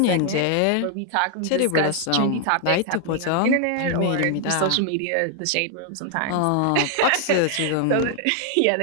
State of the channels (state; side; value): different; both; correlation 0.00